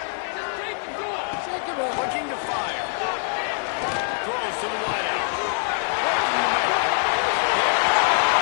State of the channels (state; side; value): silent; right; 57 dB below the other